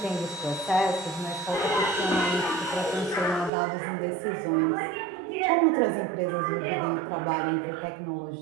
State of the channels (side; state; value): left; drops out; at 3.5 s